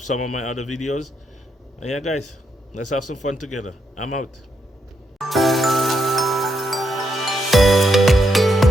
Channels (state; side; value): normal; both; correlation 0.79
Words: of my other videos. And yeah, guys, let's have some fun together. I'm out.